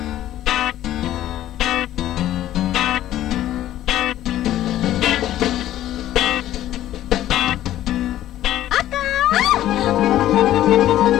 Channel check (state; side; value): quieter; right; 13.2 dB